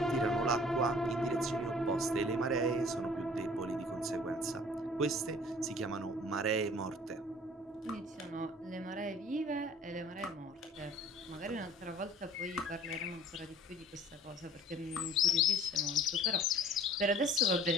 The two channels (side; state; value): both; normal; correlation 0.50